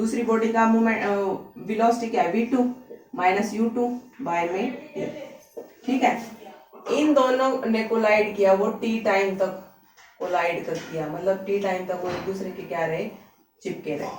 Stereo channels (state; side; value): identical; both; correlation 1.00